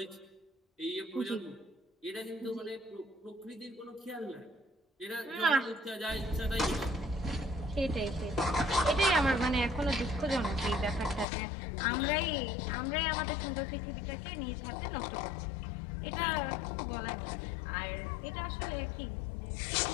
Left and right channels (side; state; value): right; drops out; at 11.2 s